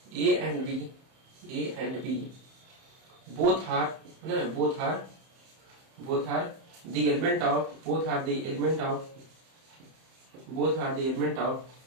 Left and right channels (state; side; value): late; left; 31 ms